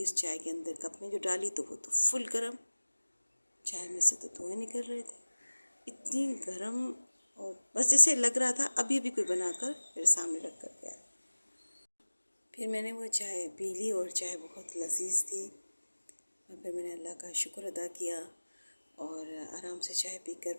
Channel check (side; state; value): both; inverted; correlation -1.00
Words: उस चाय के अंदर कप में जो डाली तो वो तो फुल गर्म, चाय में से तो धुएं निकल रहे थे, इतनी गर्म। और बस जैसे लग रहा था अभी अभी कोई बनाकर मेरे सामने रख कर गया। फिर मैंने वो चाय पी ली और चाय बहुत लजीज थी और फिर मैंने अल्लाह का शुक्र अदा किया और आराम से चाय